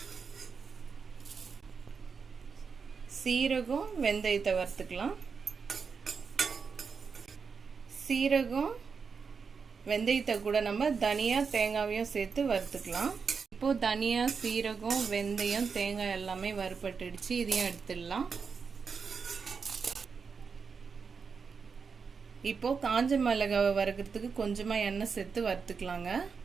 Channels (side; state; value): left; quieter; 5.6 dB